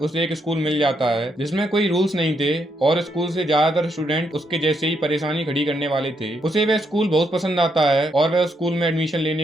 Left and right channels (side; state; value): both; normal; correlation 0.77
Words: एक स्कूल मिल जाता है जिसमें कोई रूल्स नहीं थे और स्कूल से ज्यादातर स्टूडेंट उसके जैसे ही परेशानी खड़ी करने वाले थे। उसे वह स्कूल बहुत पसंद आता है और वह स्कूल में एडमिशन